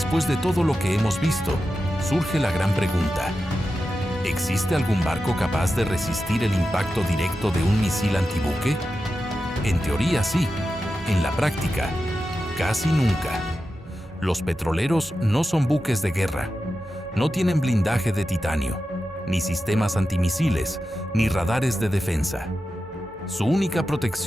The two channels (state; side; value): normal; both; correlation 0.91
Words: de todo lo que hemos visto, surge la gran pregunta: ¿existe algún barco capaz de resistir el impacto directo de un misil antibuque? En teoría sí, en la práctica, casi nunca. Los petroleros no son buques de guerra, no tienen blindaje de titanio, ni sistemas antimisiles, ni radares de defensa. Su única